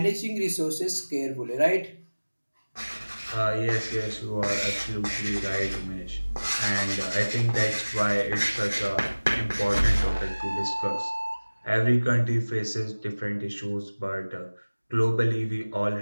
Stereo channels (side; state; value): both; inverted; correlation -1.00